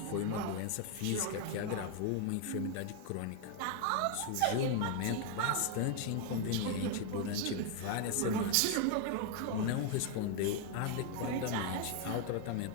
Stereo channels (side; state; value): both; different; correlation 0.00